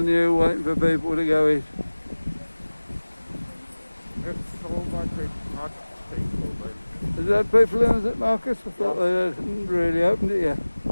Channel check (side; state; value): both; inverted; correlation -1.00